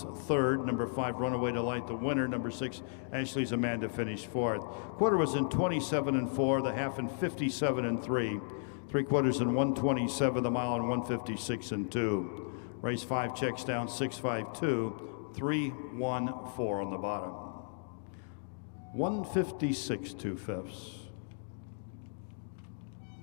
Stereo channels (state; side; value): silent; right; digital silence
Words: 3rd. Number 5, Runaway Delight, the winner. Number 6, Ashley's Amanda finished 4th. Quarter was in 27 and 4, the half in 57 and 3. 3/4 in 127, the mile in 156 and 2. Race 5 checks down 652, 314 on the bottom. 156 2/5.